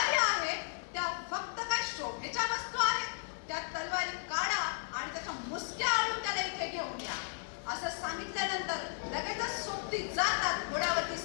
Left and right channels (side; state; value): right; silent; digital silence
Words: आहे त्या फक्त काय शोभेच्या वस्तू आहेत? त्या तलवारी काढा आणि त्याच्या मुसक्या आणून त्याला इथे घेऊन या. असं सांगितल्यानंतर लगेचच सोबती जातात, घोड्यावरती